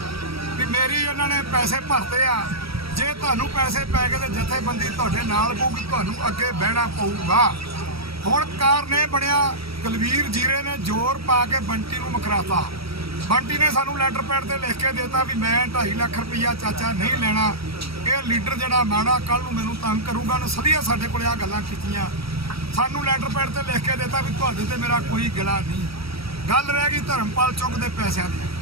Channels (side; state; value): left; late; 0.76 ms